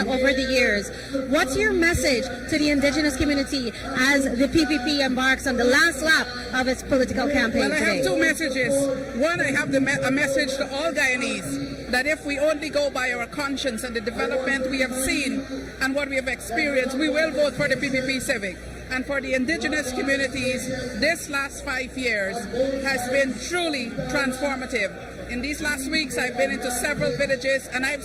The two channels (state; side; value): identical; both; correlation 1.00